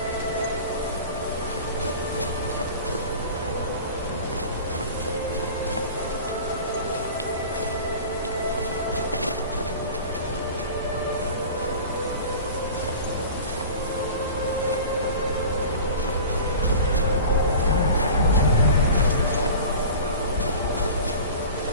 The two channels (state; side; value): inverted; both; correlation -0.37